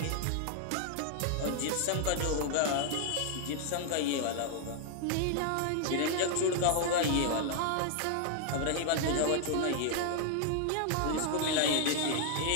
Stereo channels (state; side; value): different; both; correlation 0.00